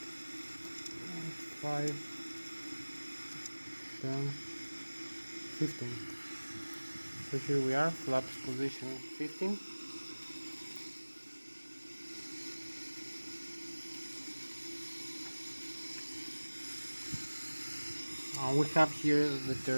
10, 15. So here we are, flaps position 15. We have here the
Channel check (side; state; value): both; inverted; correlation -1.00